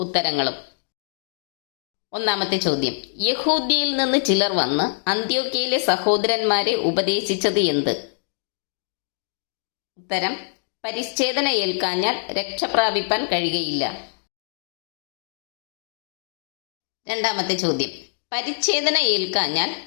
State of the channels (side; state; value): right; silent; digital silence